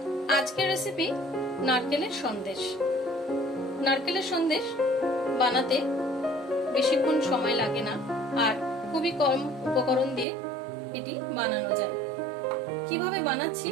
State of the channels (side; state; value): left; drops out; at 10.2 s